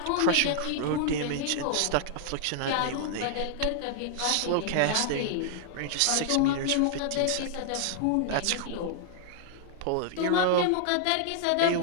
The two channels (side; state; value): both; different; correlation 0.00